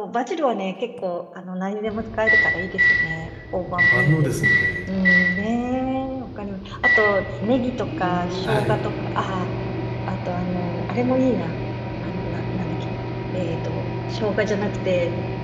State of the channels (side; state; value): both; identical; correlation 1.00